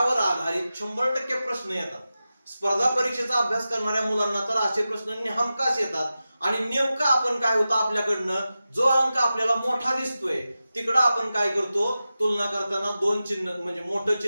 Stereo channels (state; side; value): inverted; both; correlation -0.94